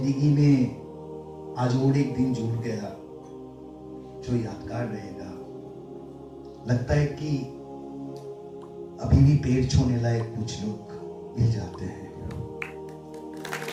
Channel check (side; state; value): both; identical; correlation 1.00